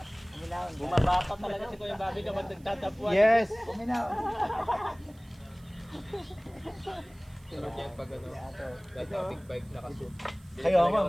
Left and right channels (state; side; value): noise; right; hiss, 29 dB below the sound